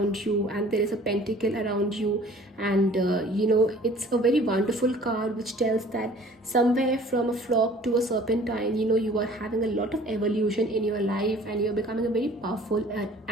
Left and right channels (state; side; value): normal; both; correlation 0.50